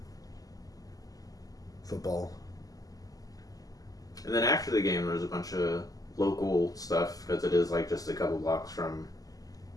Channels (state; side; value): late; right; 0.17 ms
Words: football. And then after the game, there's a bunch of local stuff because it is like just a couple blocks from